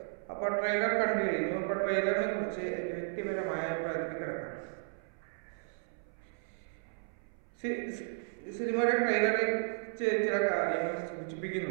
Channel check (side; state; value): left; silent; 55 dB below the other